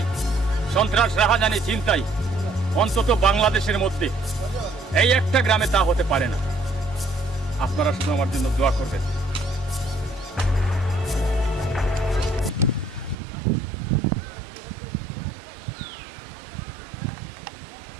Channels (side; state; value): left; drops out; at 13.2 s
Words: সন্ত্রাস, রাহাজানি, চিন্তাই অন্তত বাংলাদেশের মধ্যে এই একটা গ্রামে তা হতে পারে না। আপনারা শুধু আমার জন্য দোয়া করবেন।